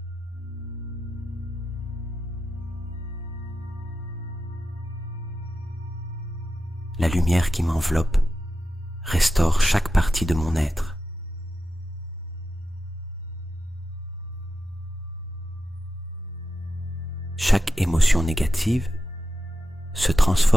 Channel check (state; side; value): normal; both; correlation 0.90